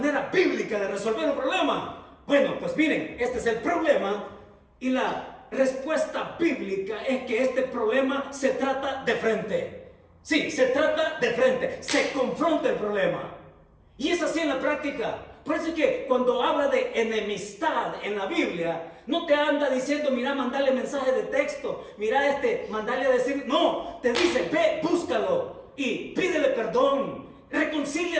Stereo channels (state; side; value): identical; both; correlation 1.00